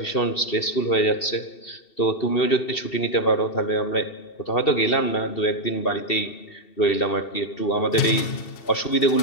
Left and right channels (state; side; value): late; right; 2.7 ms